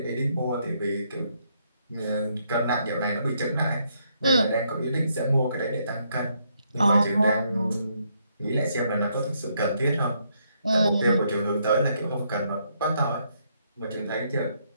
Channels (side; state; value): both; inverted; correlation -0.74